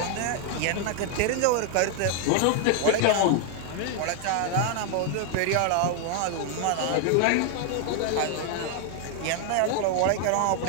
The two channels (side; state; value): both; different; correlation 0.00